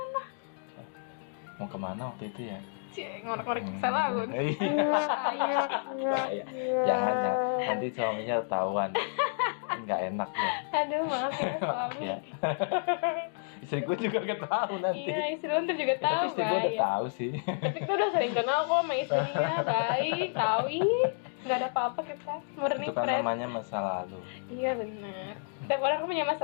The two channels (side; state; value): right; silent; digital silence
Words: Mau kemana waktu itu ya? ngorek-ngorek salah lu. Iya. Bahaya. Jangan. Nanti suaminya ketahuan. Nggak enak ya. Aduh, maaf ya suami. Ya. Istri gue juga gak tahu nanti. Iya, istri lu tuh juga Ya, tahu. tapi istri gue udah Bay. tahu sih. Tapi kita udah sering kenal kok sama istrinya, baik, tahu ih, nggak ada apa-apa kita, murni Itu kan friend. namanya masa lalu. Iya benar. Setiap orang punya masa